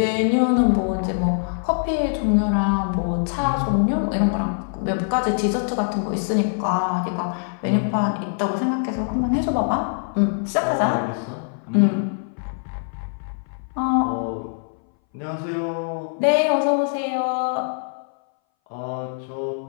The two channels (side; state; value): right; silent; 61 dB below the other